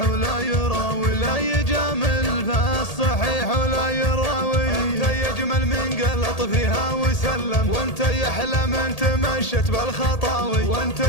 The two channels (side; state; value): right; late; 1.8 ms